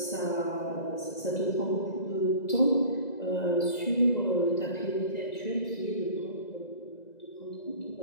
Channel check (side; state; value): right; late; 2.0 ms